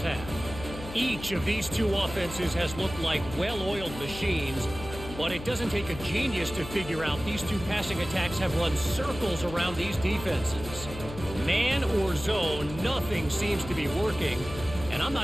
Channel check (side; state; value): left; noise; hum, 11 dB below the sound